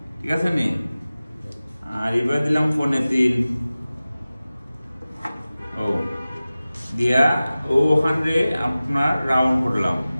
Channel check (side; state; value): both; inverted; correlation -0.97